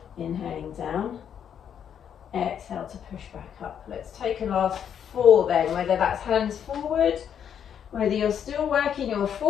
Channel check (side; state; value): right; quieter; 8.6 dB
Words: Inhaling down, exhale to push back up. Let's take a last 4 then, whether that's hands forward, whether you're still working your